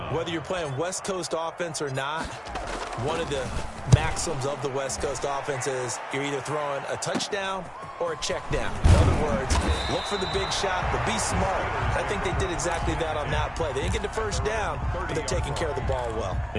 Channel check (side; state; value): both; identical; correlation 1.00